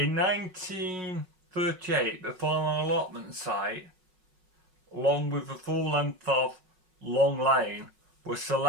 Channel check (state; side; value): late; left; 5.4 ms